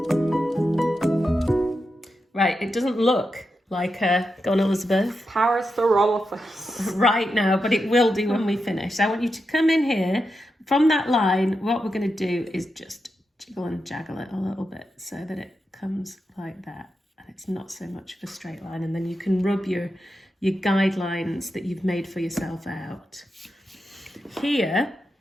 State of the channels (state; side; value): normal; both; correlation 0.87